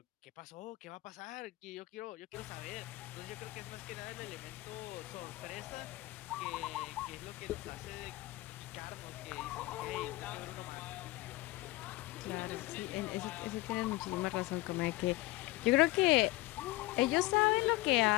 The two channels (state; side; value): quieter; right; 19.8 dB